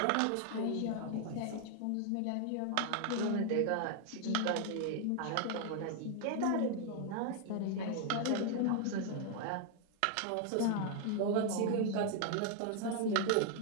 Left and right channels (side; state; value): both; different; correlation 0.00